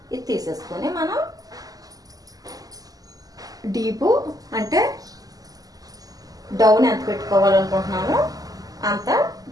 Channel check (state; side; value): late; left; 0.17 ms